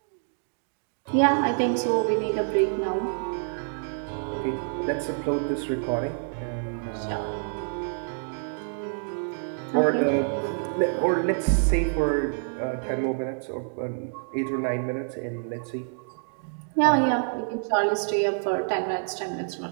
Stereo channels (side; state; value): left; silent; digital silence